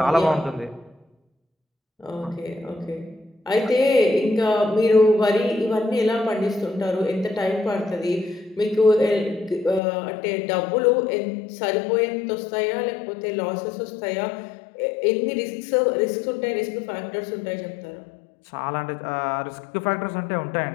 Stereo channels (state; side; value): drops out; right; at 9.8 s